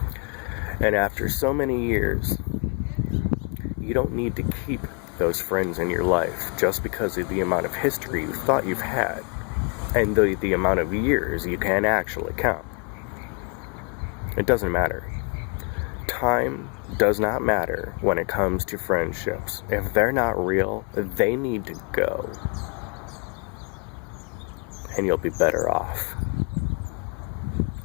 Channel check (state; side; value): quieter; right; 35.9 dB